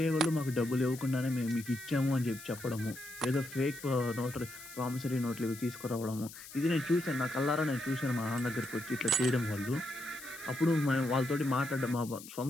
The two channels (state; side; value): noise; left; hiss, 15 dB below the sound